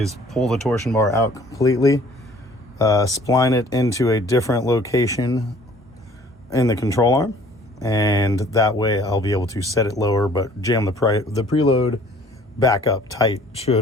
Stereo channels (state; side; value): normal; both; correlation 0.54